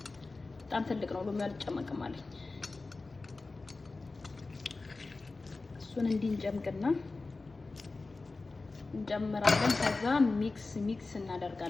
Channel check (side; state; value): right; quieter; 3.6 dB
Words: በጣም ትልቅ ነው ሎሚ አልጨመቅም አለኝ። እሱን እንዲህ እንጨምቅና እንጨምራለን። ከዛ ሚክስ